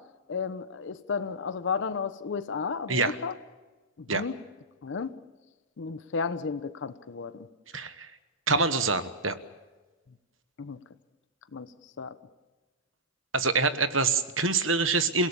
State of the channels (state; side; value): normal; both; correlation -0.13